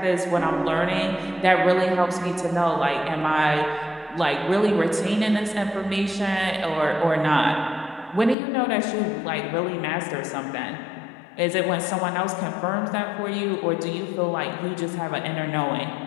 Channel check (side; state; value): right; drops out; at 8.3 s